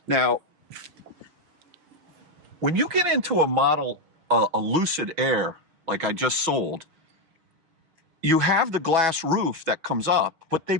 Now, when you get into a Lucid Air, like I just sold, you have the glass roof that comes up, but they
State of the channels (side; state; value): left; late; 6.2 ms